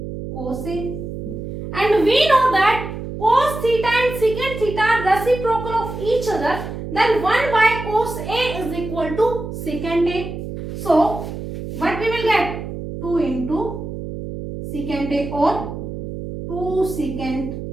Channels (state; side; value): noise; right; hum, 8 dB below the sound